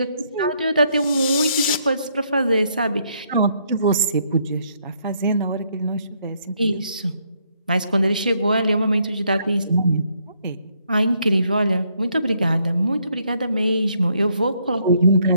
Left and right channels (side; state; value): both; inverted; correlation -0.72